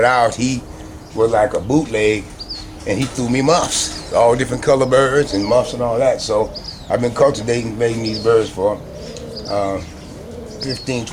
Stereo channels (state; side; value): identical; both; correlation 1.00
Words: out. He was like a bootleg, and he threw me muffs, all different color birds and muffs and all that. So I've been cultivating, making these birds for 15,